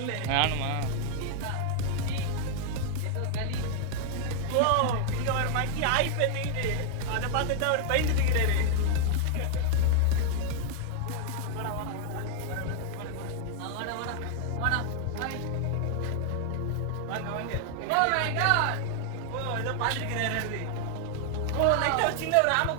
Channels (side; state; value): both; different; correlation 0.00